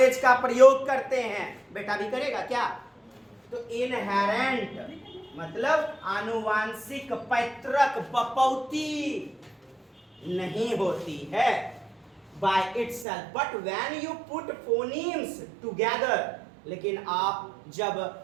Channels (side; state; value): left; drops out; at 13.1 s